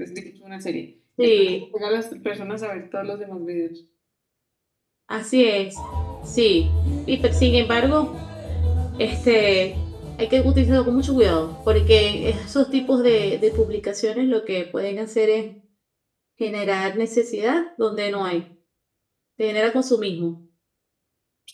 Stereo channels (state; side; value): identical; both; correlation 1.00